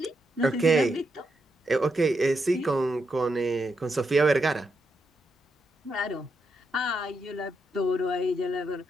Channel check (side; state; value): both; normal; correlation 0.82